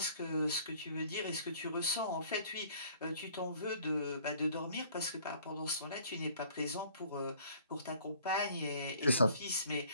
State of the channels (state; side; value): inverted; both; correlation -0.55